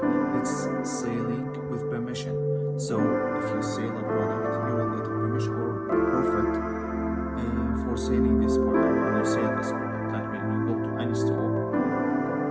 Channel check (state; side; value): identical; both; correlation 1.00